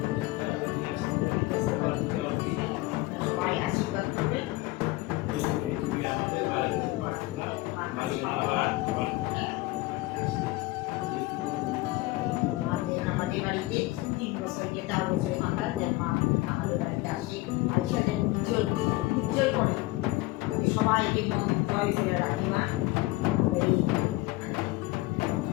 সবাই আশীর্বাদ করবে। আমাদের বাড়িতে আমাদের বাড়িতে 3 বছর যে 4 বছর মাথায় যে মা আমাদের বাড়িতে আসে, আইসা যে উজ্জ্বল করে সবাইকে মন জয় করে রাখি মা।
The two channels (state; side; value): quieter; right; 20.2 dB